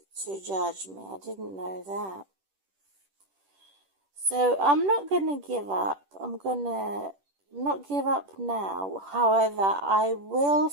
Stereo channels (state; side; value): late; left; 10 ms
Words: to judge me. I didn't know that. So I'm not going to give up. I'm going to not give up now. However, I will